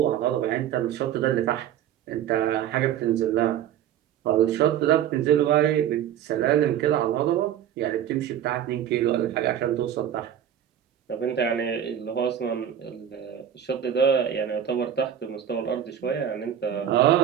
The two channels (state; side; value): quieter; left; 10.0 dB